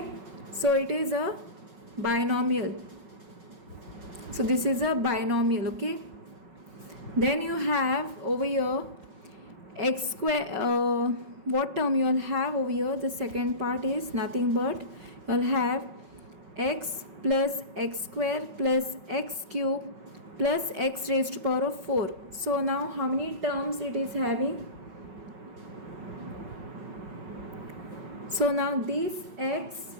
so it is a binomial. So this is a binomial. Okay, then you have over here x square. What term you will have over here? The second part is nothing but you will have x plus x square plus x cube plus x raised to power of 4. So now how many terms it is having? So now this x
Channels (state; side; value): late; left; 5.3 ms